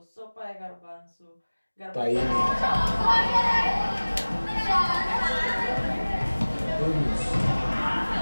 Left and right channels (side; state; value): both; inverted; correlation -1.00